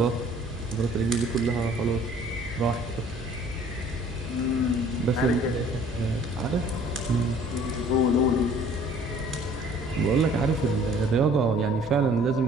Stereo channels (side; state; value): right; noise; hum, 16 dB below the sound